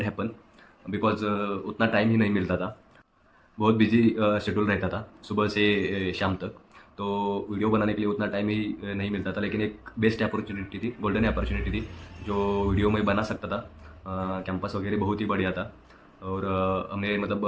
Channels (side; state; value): both; identical; correlation 1.00